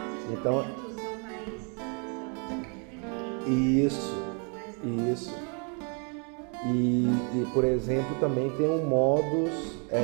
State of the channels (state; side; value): quieter; left; 38.0 dB